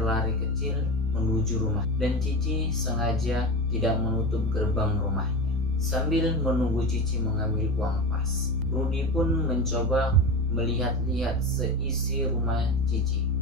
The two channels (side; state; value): both; normal; correlation 0.25